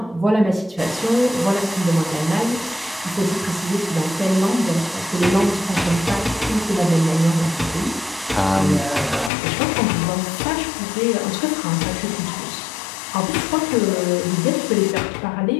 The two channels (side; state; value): right; drops out; at 9.3 s